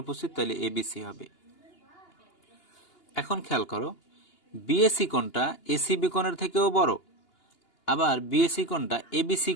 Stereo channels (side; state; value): right; late; 2.8 ms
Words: তাহলে এবিসি হবে। এখন খেয়াল করো, বিএসি কোণটা এসিবি কোণের থেকেও বড়, আবার বিএসি কোণটা এবিসি